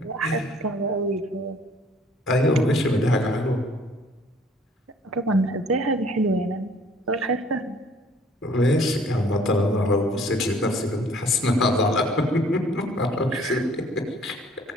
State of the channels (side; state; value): both; normal; correlation 0.57